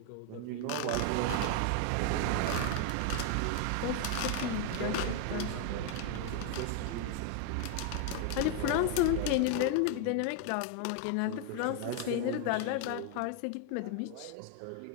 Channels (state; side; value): different; both; correlation 0.00